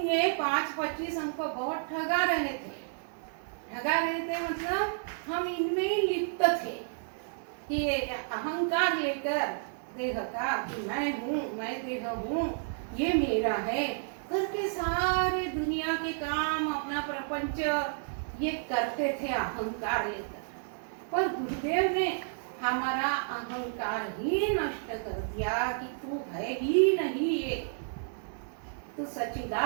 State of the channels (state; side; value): silent; left; digital silence